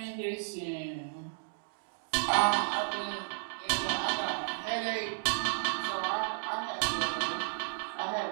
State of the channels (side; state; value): left; silent; digital silence